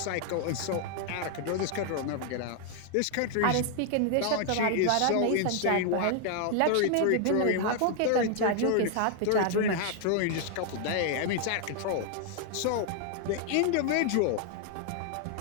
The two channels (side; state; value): both; different; correlation 0.00